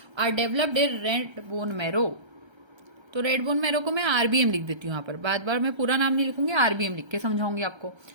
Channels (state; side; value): late; left; 1.3 ms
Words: are developed in red bone marrow. तो रेड बोन मैरो को मैं आरबीएम लिख देती हूँ यहाँ पर, बार बार मैं पूरा नाम नहीं लिखूंगी, आरबीएम लिख के समझाऊंगी आपको।